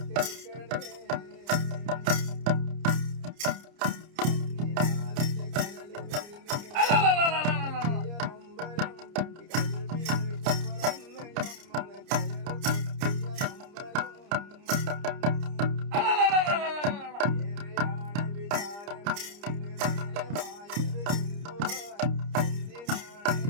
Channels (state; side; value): late; left; 30 ms